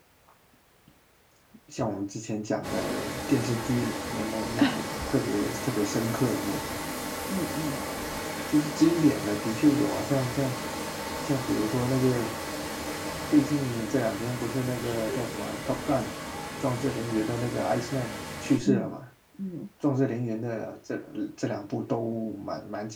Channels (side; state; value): both; identical; correlation 1.00